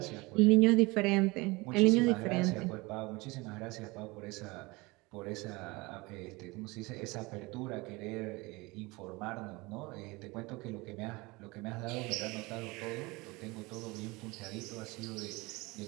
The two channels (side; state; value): left; quieter; 23.9 dB